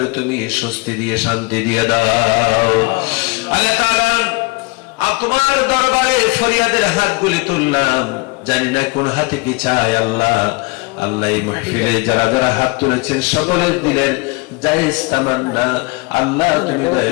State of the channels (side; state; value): right; quieter; 26.4 dB